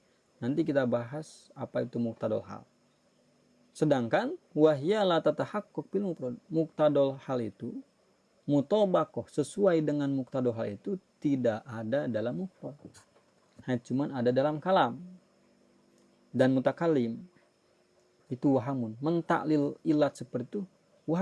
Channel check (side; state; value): both; identical; correlation 1.00